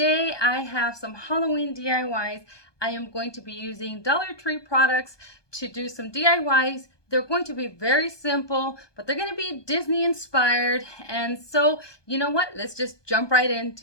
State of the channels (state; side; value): late; right; 1.2 ms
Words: I have some Halloween DIYs. I am going to be using Dollar Tree products to do some DIYs. They're going to be very simple, but they're going to be Disney inspired. And so, you know what? Let's just jump right